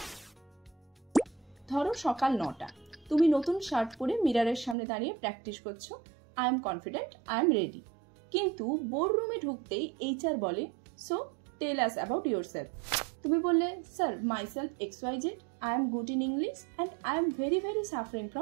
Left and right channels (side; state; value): left; drops out; at 4.8 s